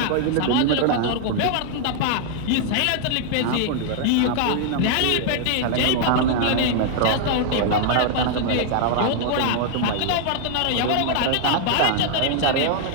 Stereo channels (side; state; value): both; different; correlation 0.00